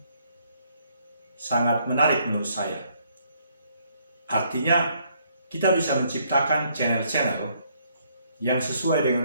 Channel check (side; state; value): both; inverted; correlation -0.68